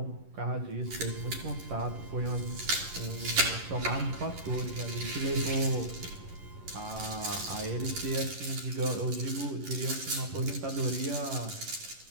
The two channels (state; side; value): late; left; 11 ms